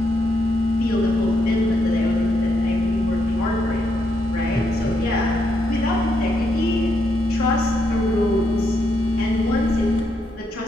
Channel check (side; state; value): both; normal; correlation 0.79